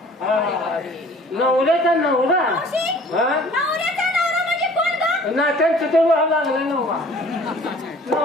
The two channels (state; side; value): normal; both; correlation 0.50